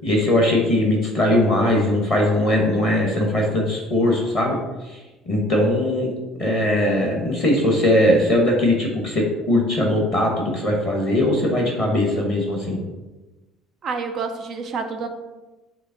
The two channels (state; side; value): normal; both; correlation 0.54